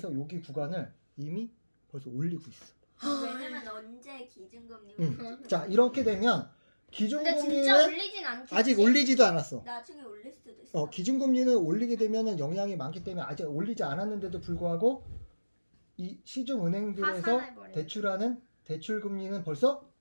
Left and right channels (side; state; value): both; inverted; correlation -1.00